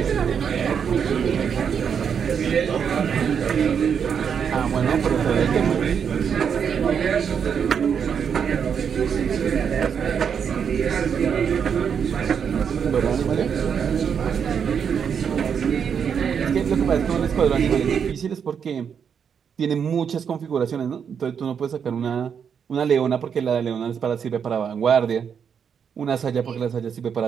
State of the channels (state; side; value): quieter; left; 7.2 dB